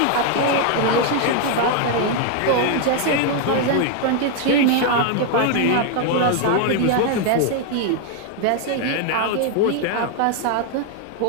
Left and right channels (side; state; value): both; different; correlation 0.00